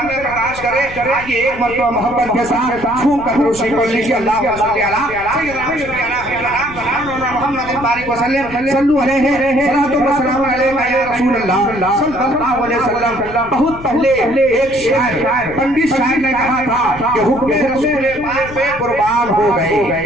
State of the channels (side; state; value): left; noise; rumble, 15 dB below the sound